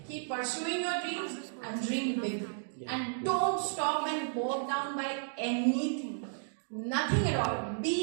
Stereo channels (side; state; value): left; silent; digital silence